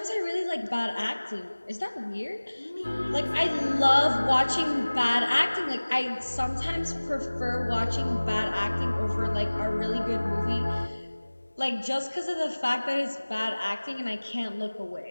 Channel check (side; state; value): both; inverted; correlation -1.00